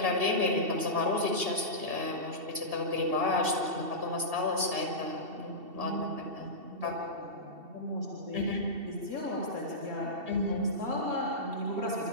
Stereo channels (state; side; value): late; left; 2.7 ms